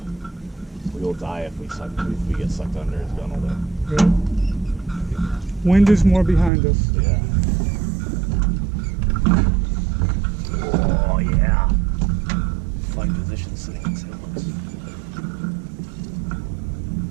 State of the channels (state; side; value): drops out; left; at 6.5 s